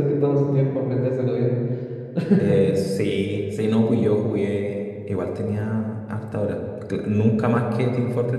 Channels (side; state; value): both; identical; correlation 1.00